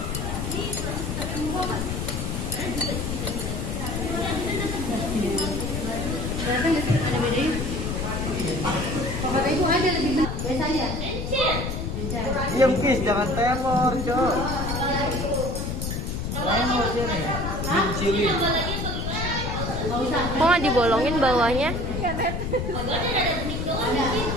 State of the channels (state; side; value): noise; left; rumble, 3 dB below the sound